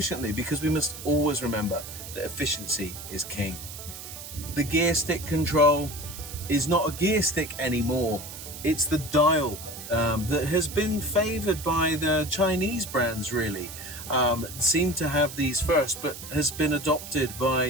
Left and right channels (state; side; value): noise; right; hiss, 12 dB below the sound